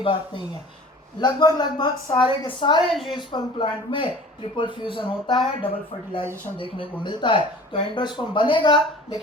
बात नहीं है। लगभग सारे के सारे एंजियोस्पर्म प्लांट में ट्रिपल फ्यूजन होता है, डबल फर्टिलाइजेशन देखने को मिलता है। तो एंडोस्पर्म बनेगा,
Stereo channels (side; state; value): both; normal; correlation 0.44